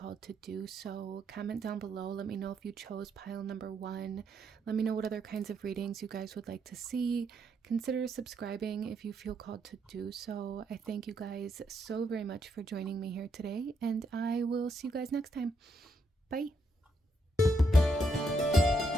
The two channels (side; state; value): both; normal; correlation 0.77